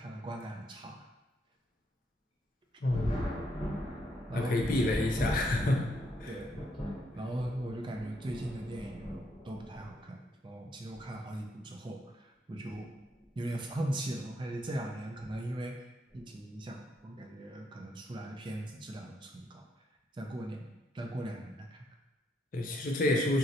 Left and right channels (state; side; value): normal; both; correlation 0.76